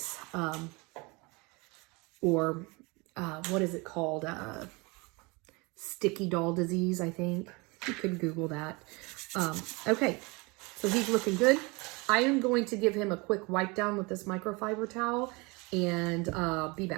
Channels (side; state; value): left; quieter; 26.8 dB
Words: Or what is it called? Sticky doll disease, I think. You could Google that. Okay, so he's looking good. I am going to give him a quick wipe down with this microfiber towel and be